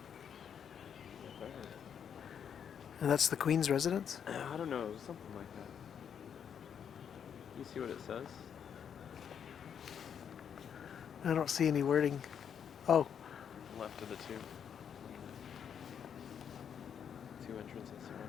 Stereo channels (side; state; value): right; quieter; 8.0 dB